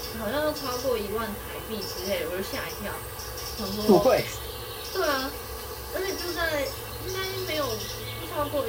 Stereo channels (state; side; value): identical; both; correlation 1.00